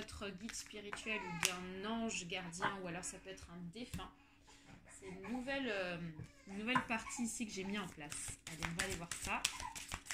guide spirituel ou d'un ange gardien, ou alors ça peut être un défunt. C'est une nouvelle partie ici que j'ai mis en place. Allez, on va aller voir ça.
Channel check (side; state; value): both; identical; correlation 1.00